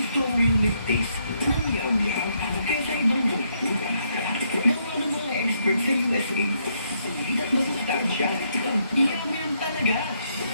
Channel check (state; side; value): inverted; both; correlation -0.74